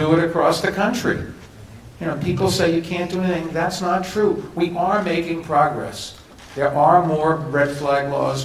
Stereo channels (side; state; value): both; identical; correlation 1.00